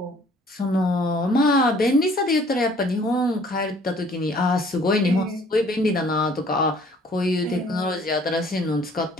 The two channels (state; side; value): normal; both; correlation 0.56